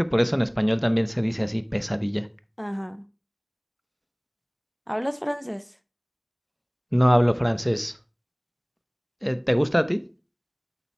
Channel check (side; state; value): both; identical; correlation 1.00